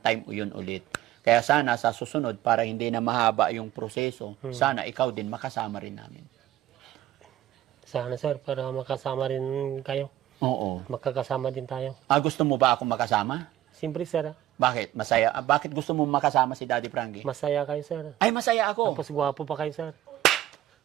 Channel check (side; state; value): left; quieter; 13.6 dB